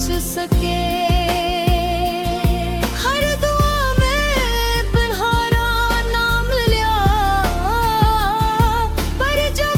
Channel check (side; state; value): both; identical; correlation 1.00